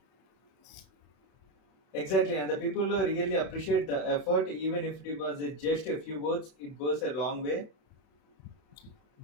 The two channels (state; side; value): late; right; 31 ms